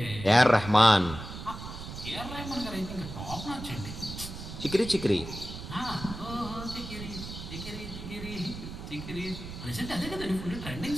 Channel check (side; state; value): right; noise; rumble, 10 dB below the sound